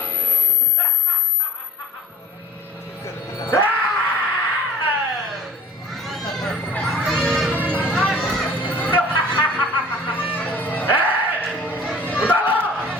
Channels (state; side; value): normal; both; correlation 0.45